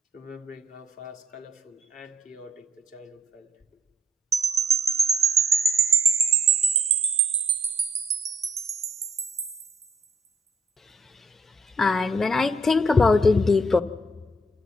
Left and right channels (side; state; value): both; normal; correlation 0.67